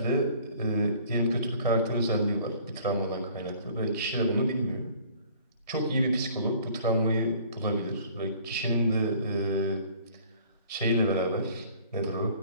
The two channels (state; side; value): inverted; both; correlation -0.53